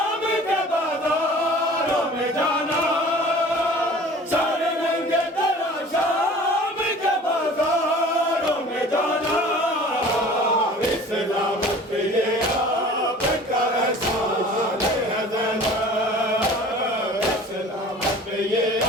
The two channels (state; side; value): normal; both; correlation 0.45